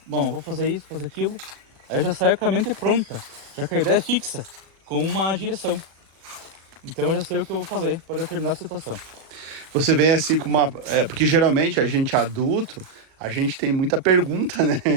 bom, eu vou fazer isso, fazer aquilo. Aí eu já saio com a mente pronta, já que a ideia é fixa, com uma direção. Então eu já sei o que eu vou fazer para determinada situação. Você vem assim com uma... porque geralmente a gente adulto, a gente tem muita pergunta, né?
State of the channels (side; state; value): left; late; 37 ms